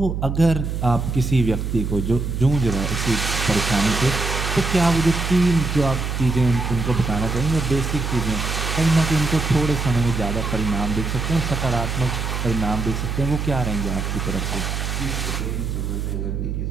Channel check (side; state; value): right; noise; hum, 3 dB below the sound